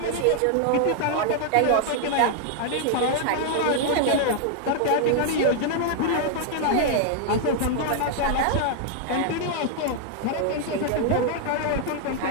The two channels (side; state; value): both; different; correlation 0.00